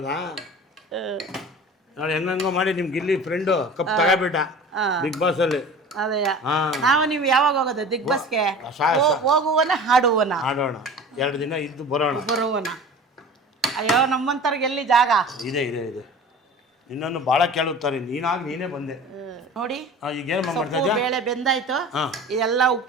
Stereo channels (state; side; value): normal; both; correlation 0.39